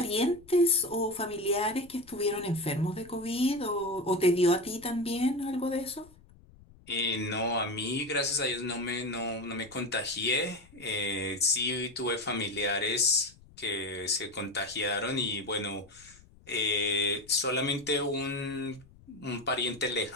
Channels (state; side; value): noise; left; rumble, 25 dB below the sound